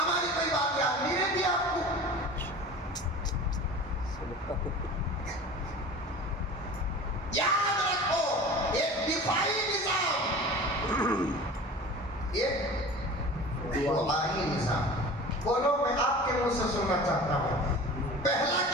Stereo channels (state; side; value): normal; both; correlation 0.38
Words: کوئی بات یاد نہیں رہتی آپ کو۔ یاد رکھو، ایک دفاعی نظام، ایک دعائی نظام۔ بولو، میں آپ کے منہ سے سننا چاہتا ہوں، پہلا